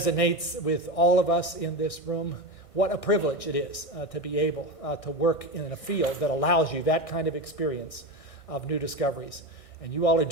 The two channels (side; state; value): right; late; 1.6 ms